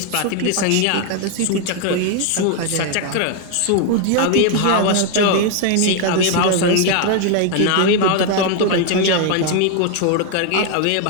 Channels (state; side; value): different; both; correlation 0.01